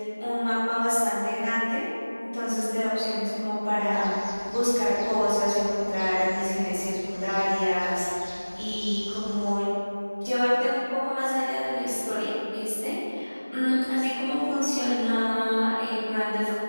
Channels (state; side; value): inverted; both; correlation -1.00